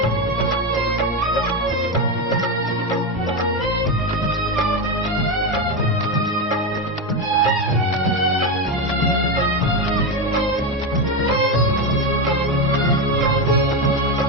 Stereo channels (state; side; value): normal; both; correlation 0.13